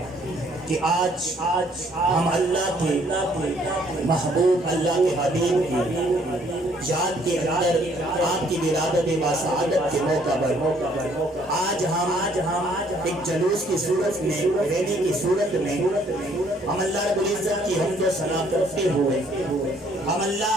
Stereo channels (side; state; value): both; normal; correlation 0.63